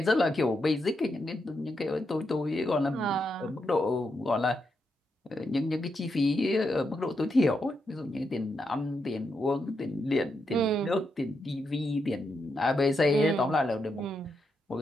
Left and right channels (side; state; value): both; normal; correlation 0.83